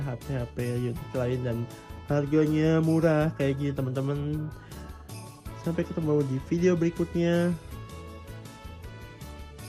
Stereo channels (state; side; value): identical; both; correlation 1.00